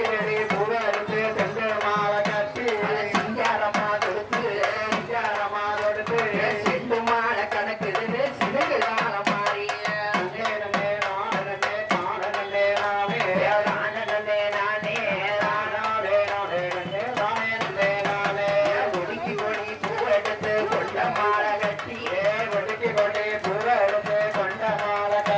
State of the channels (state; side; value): identical; both; correlation 1.00